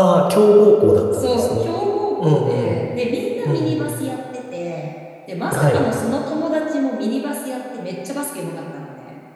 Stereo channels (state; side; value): identical; both; correlation 1.00